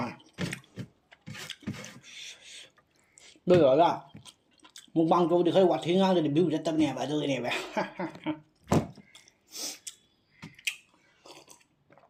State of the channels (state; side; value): identical; both; correlation 1.00